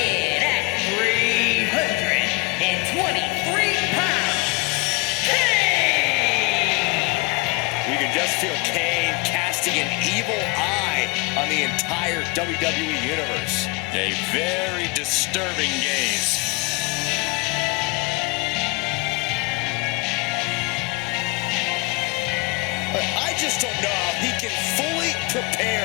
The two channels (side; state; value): right; quieter; 27.2 dB